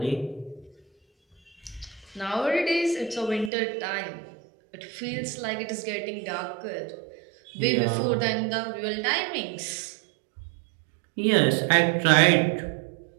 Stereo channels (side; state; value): left; drops out; at 3.5 s